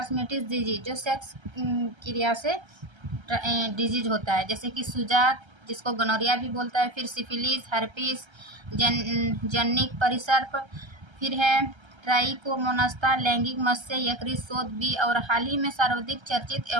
डिजीज, जो सेक्स क्रिया से डिजीज होता है, जैसे कि सुजाक, जिसको गोनोरिया भी बोलता है, फिर सिफिलिस, हर्पिस, जन्निक परिसर्प, फिर है ट्राइकोमोनास्ता, लैंगिक मत्स्य यकृत शोथ बी, और हाल ही में सर्वाधिक चर्चित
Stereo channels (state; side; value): late; left; 1.3 ms